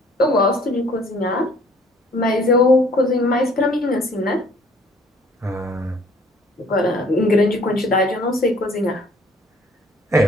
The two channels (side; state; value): both; normal; correlation 0.57